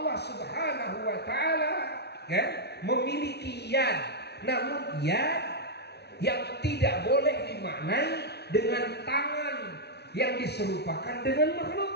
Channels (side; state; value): right; late; 0.49 ms